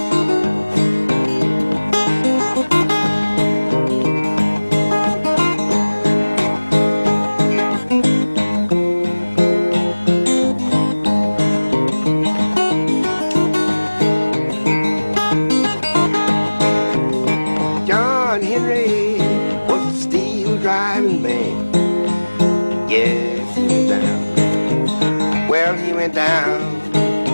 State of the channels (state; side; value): inverted; both; correlation -1.00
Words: Driving man, yes, he went down. Well, he went down.